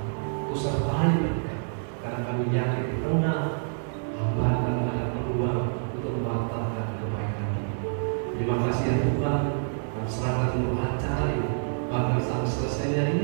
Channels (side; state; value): left; silent; digital silence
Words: kusertai mereka, karena kami yakin di tengah hambatan ada peluang untuk membatalkan kebaikan ini. Terima kasih ya Tuhan, kami serahkan untuk acara ini, bahkan sampai selesainya